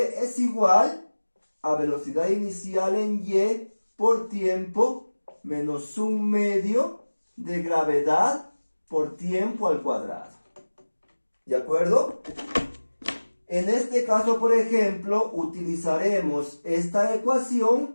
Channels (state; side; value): inverted; both; correlation -1.00